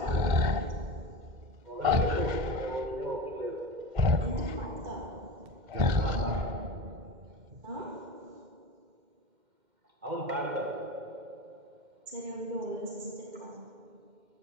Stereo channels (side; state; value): left; late; 2.1 ms